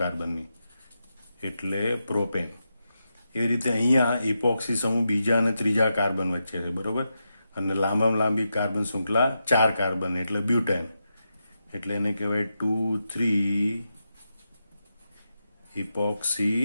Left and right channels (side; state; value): both; inverted; correlation -0.87